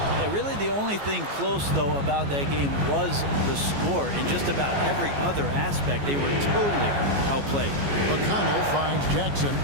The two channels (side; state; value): left; late; 14 ms